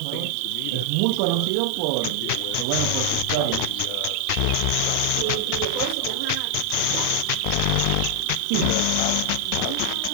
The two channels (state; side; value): different; both; correlation 0.00